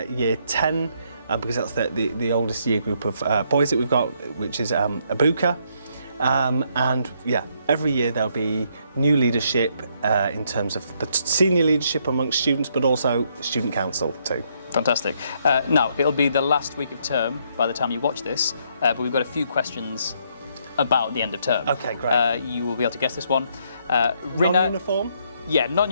year 10, because that's the oldest year group of boys that we've got, which is Abuka. And yeah, every year there'll be new leadership in terms of the senior leadership amongst students, but also student council too. Fantastic. Now, it'll be the last week of term by the time you watch this, but we've got a few questions about the end of term. Okay, great. You will be able to guess this one. Non-uniform? Yeah,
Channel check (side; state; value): both; inverted; correlation -0.72